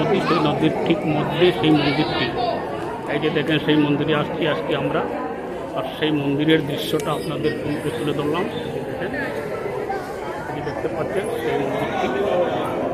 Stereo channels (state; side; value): identical; both; correlation 1.00